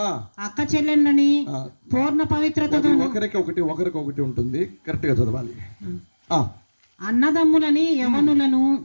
అక్క చెల్లెళ్ళని పూర్ణ పవిత్రతతో. ఒకరికి ఉంటుంది, కరెక్ట్ గా చదవాలి. అన్నదమ్ములని, యవనులను,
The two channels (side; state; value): both; inverted; correlation -1.00